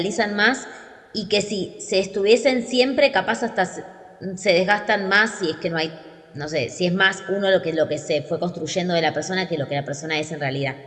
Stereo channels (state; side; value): identical; both; correlation 1.00